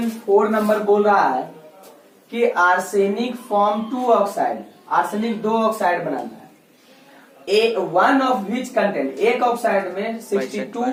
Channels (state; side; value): identical; both; correlation 1.00